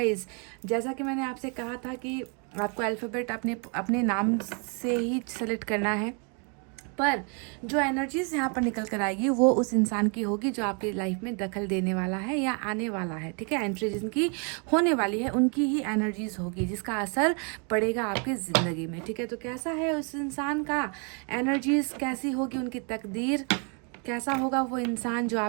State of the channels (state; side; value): quieter; left; 37.4 dB